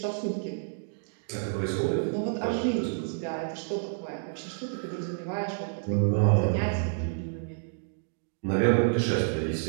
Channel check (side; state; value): left; silent; digital silence